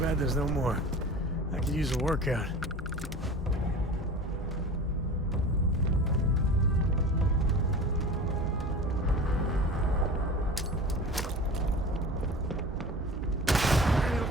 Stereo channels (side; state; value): both; normal; correlation 0.36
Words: there's no more. I could use a workout. It'll